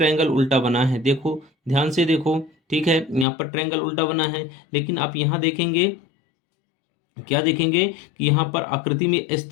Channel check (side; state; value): right; drops out; at 3.2 s